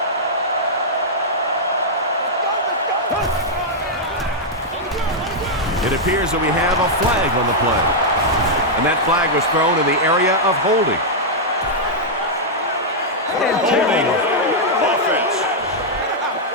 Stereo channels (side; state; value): both; normal; correlation -0.06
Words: It appears that we have a flag on the play. And that flag was thrown in the area of holding. Offense.